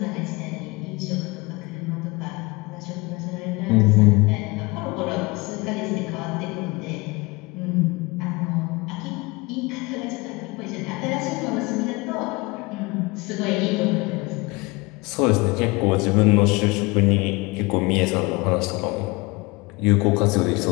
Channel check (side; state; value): right; quieter; 24.9 dB